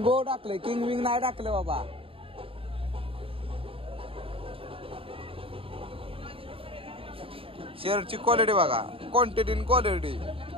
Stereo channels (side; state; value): left; late; 0.27 ms